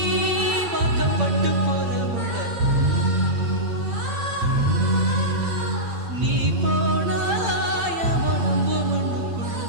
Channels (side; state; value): left; late; 8.7 ms